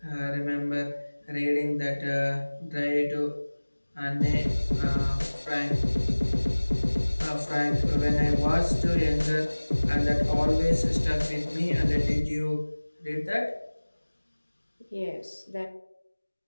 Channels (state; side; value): inverted; both; correlation -1.00